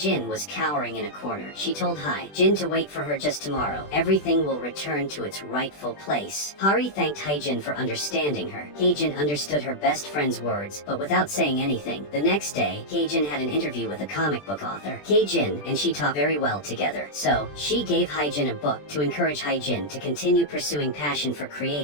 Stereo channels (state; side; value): late; right; 20 ms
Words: was cowering in a corner. She told Hae-jin to wait for her just tomorrow. Everything will return to its rightful place. Hari thanked Hae-jin for understanding her. Hae-jin understood her best friend's words, but without saying anything. The next day, Hae-jin had an interview with a comic book author. Hae-jin and she talked very well together, so she gave Hae-jin a book to encourage Hae-jin to continue pursuing passion for